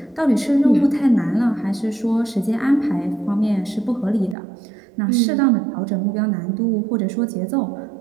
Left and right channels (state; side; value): drops out; left; at 4.4 s